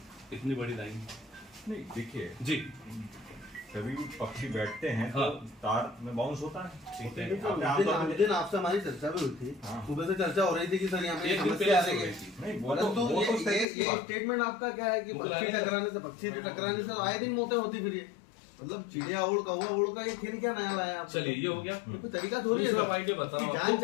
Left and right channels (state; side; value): drops out; right; at 13.7 s